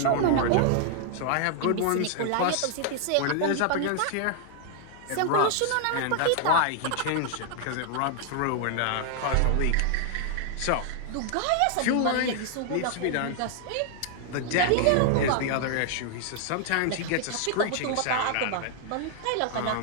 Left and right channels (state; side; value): different; both; correlation 0.00